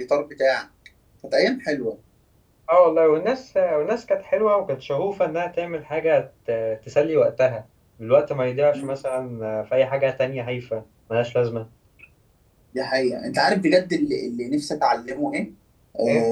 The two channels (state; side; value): identical; both; correlation 1.00